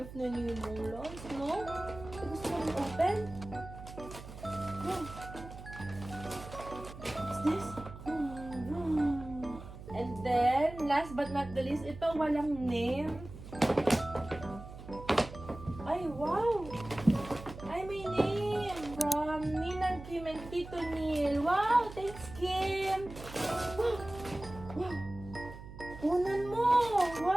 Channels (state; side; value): noise; right; hum, 13 dB below the sound